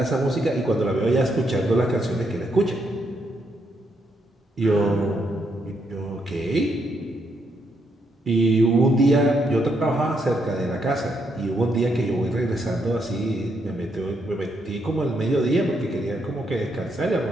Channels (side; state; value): both; normal; correlation 0.77